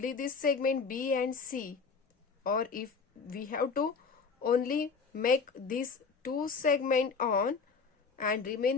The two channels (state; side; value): quieter; right; 5.1 dB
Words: this segment B and C, or if we have to only make this 2 segment on and